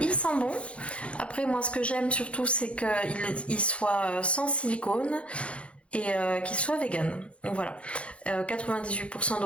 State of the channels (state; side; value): late; right; 0.061 ms